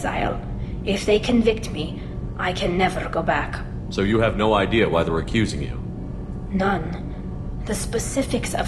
If they convict me, I can never go back. So you have no idea why they're accusing you? None. The specifics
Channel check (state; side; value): identical; both; correlation 1.00